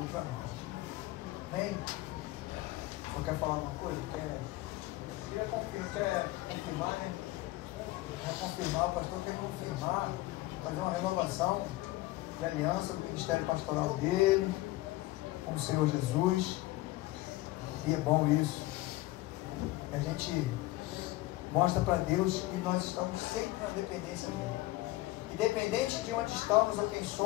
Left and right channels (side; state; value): right; quieter; 18.3 dB